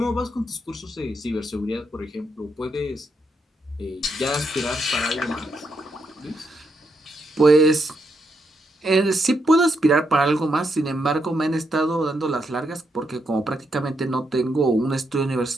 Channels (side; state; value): both; normal; correlation 0.80